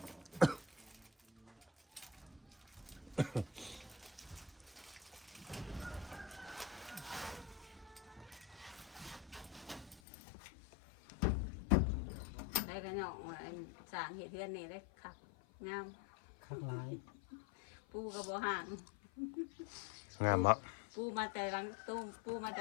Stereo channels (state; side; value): drops out; right; at 10.0 s